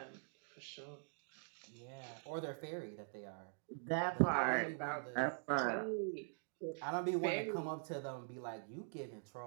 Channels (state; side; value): silent; left; digital silence